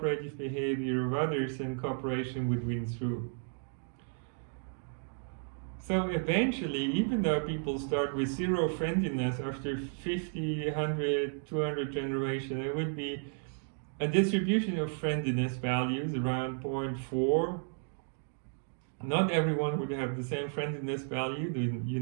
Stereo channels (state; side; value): silent; left; 56 dB below the other